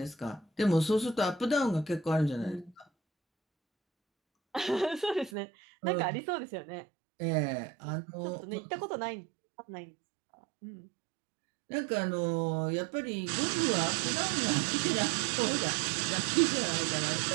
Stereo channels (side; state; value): left; drops out; at 5.3 s